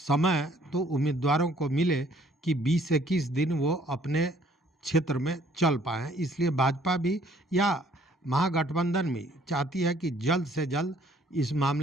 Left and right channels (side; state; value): both; normal; correlation 0.61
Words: तो उम्मीदवारों को मिले कि 20-21 दिन वो अपने क्षेत्र में चल पाएँ। इसलिए भाजपा भी या महागठबंधन भी चाहती है कि जल्द से जल्द इस